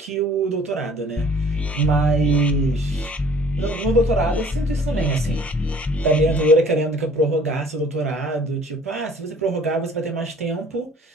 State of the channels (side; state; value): both; normal; correlation 0.53